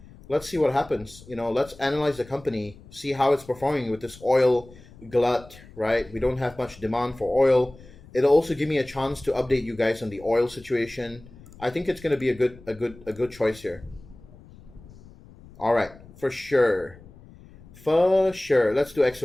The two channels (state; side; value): noise; left; rumble, 21 dB below the sound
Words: Let's see what happens. You know, let's analyze the company, see how it's performing with this oil glut, right? We don't have much demand for oil. It'll also give me a chance to update you guys on the oil situation. I think it's going to be a good choice here. All right, for sure. For sure. Let's do